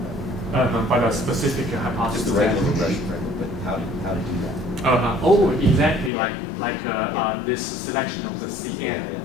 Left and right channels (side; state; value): right; drops out; at 6.1 s